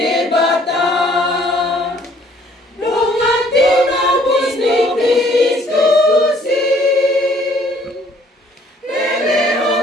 Dongati nabis ni Kristus,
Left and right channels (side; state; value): both; normal; correlation 0.60